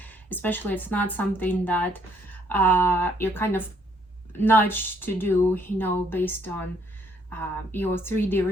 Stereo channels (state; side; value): normal; both; correlation 0.67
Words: especially it's not something that you're kind of nudged to do, based on your 3D